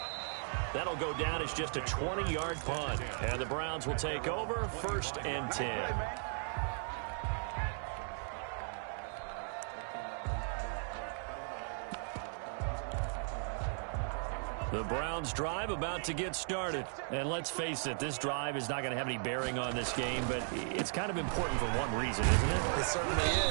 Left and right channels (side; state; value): left; silent; 53 dB below the other